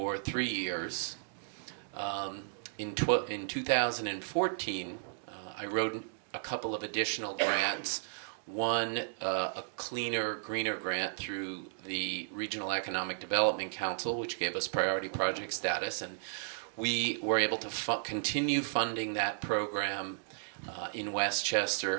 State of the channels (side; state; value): left; silent; digital silence